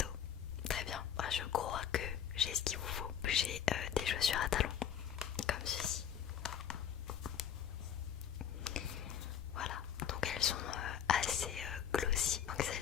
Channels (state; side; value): quieter; right; 8.8 dB